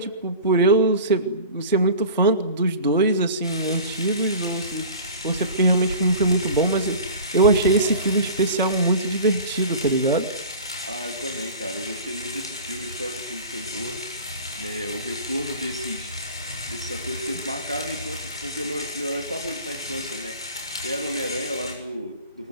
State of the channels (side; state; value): both; inverted; correlation -0.39